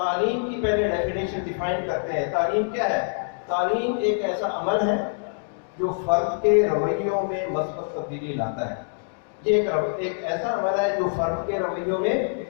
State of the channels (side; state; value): right; silent; digital silence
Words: کی پہلے ڈیفینیشن ڈیفائن کرتے ہیں. تعلیم کیا ہے؟ تعلیم ایک ایسا عمل ہے جو فرد کے رویوں میں مثبت تبدیلی لاتا ہے. یہ ایک ایسا عمل ہے جو فرد کے رویوں میں